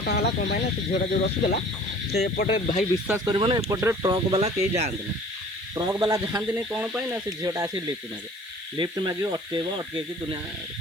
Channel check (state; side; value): noise; right; hiss, 26 dB below the sound